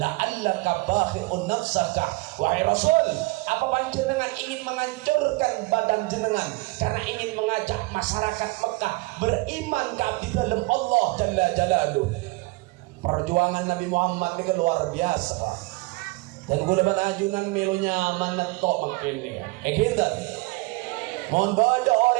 la'allaka bakhi'un nafsaka. Wahai Rasul, apa panjenengan ingin menghancurkan badan jenengan karena ingin mengajak masyarakat Mekah beriman ke abdi dalam Allah Jalla Jalaluh. Perjuangan Nabi Muhammad ini luar biasa pak. Dan gue dapat ajunan melunya menetok makin ini. Gitu. Mohon bodoh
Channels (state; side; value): quieter; left; 23.5 dB